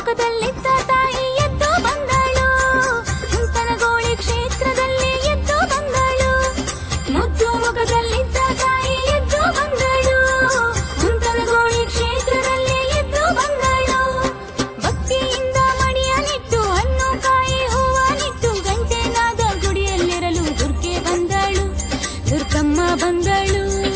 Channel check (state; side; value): identical; both; correlation 1.00